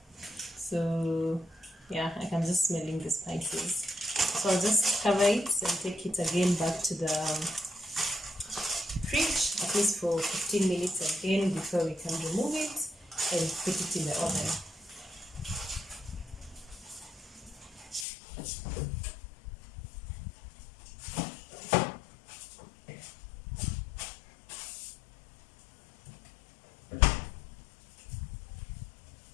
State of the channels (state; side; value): drops out; right; at 18.1 s